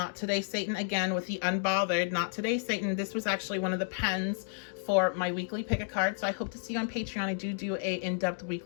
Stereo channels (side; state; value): right; silent; digital silence